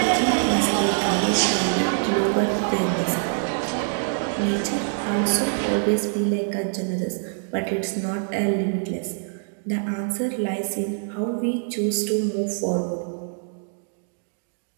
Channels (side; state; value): left; silent; digital silence